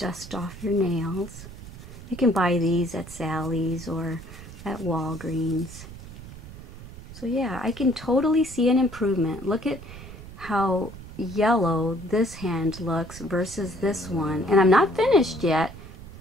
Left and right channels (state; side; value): noise; right; rumble, 14 dB below the sound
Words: off your nails. You can buy these at Sally's or at Walgreens. So yeah, I can totally see an improvement. Look at how yellow this hand looks versus this one, and I'm not finished yet,